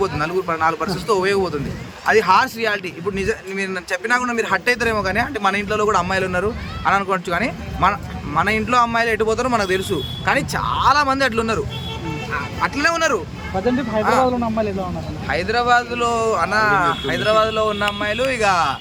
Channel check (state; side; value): identical; both; correlation 1.00